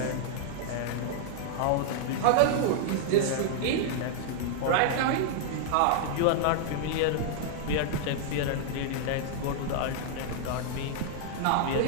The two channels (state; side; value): different; both; correlation -0.01